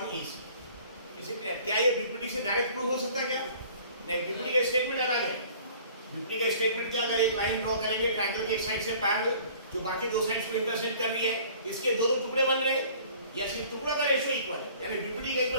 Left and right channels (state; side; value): inverted; both; correlation -0.50